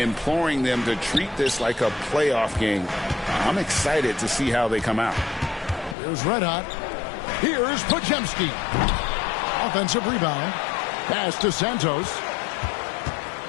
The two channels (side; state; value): right; drops out; at 6.0 s